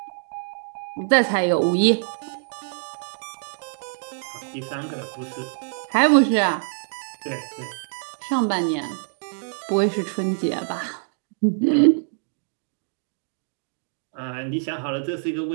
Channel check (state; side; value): silent; left; digital silence